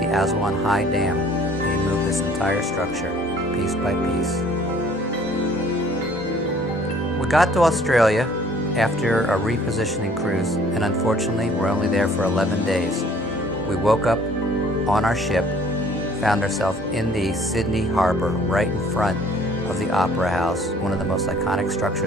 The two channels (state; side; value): normal; both; correlation 0.56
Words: the Aswan High Dam. They moved this entire structure, piece by piece. We got to Australia after a repositioning cruise, and unfortunately we're only there for 11 days. We woke up on our ship, found ourselves in the Sydney Harbour, right in front of the Opera House, one of the most iconic